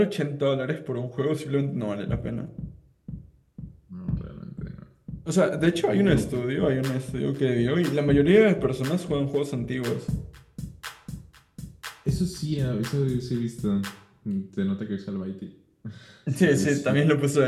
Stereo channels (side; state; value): both; identical; correlation 1.00